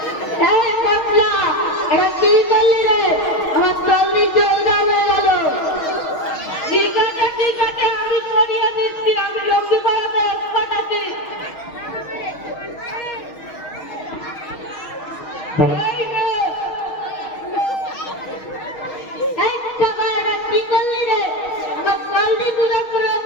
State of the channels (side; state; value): right; late; 6.4 ms